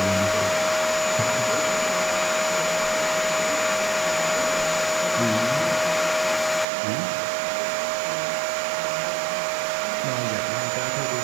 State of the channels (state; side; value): drops out; left; at 6.7 s